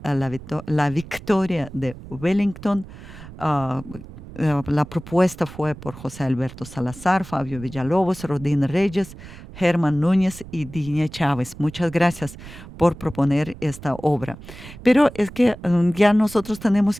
la victoria de Wellington. La propuesta fue por José Alberto Salazar, Fabio Villalobos, Rodín Reyes, Germán Núñez y Digne Chávez. Muchas gracias por proponer esta obra. Pero es que ya nosotros tenemos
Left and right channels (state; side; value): noise; right; rumble, 16 dB below the sound